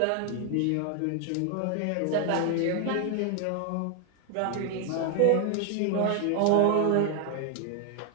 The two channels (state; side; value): different; both; correlation 0.00